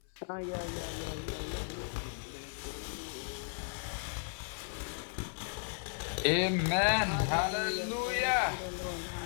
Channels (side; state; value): right; silent; 54 dB below the other